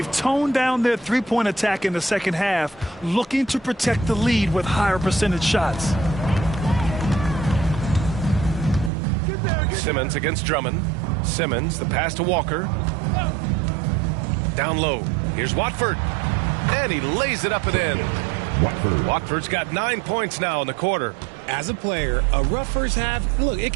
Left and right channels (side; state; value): left; drops out; at 8.9 s